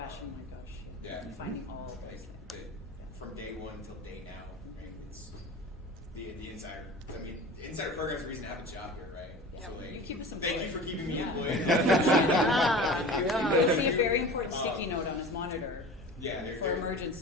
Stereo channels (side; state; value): both; normal; correlation 0.36